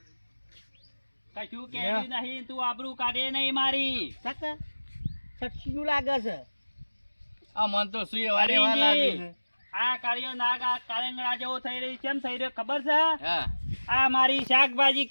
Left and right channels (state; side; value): inverted; both; correlation -1.00